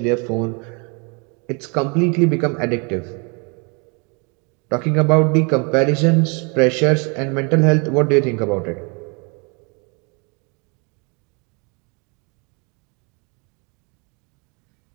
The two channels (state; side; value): quieter; left; 33.0 dB